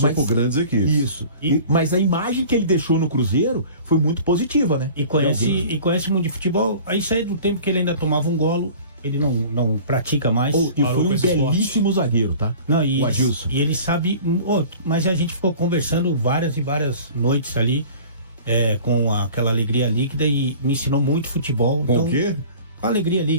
por grandes equipes. Isso. Mas a imagem que ele deixou no Cruzeiro foi muito positiva, né? E conhece muito de futebol. Isso aí do tempo que ele ainda tomava um golo, ele não pratica mais. E foi um belíssimo zagueiro, tá? O Adilson. E ele sabe... mas a gente ficou conversando várias e várias noites ali, com aquela alegria líquida, e me ensinou muito futebol. Com o quê? Com alegria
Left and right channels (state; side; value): inverted; both; correlation -0.43